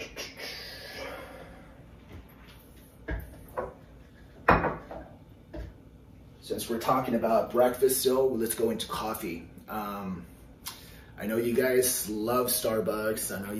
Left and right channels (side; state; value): both; identical; correlation 1.00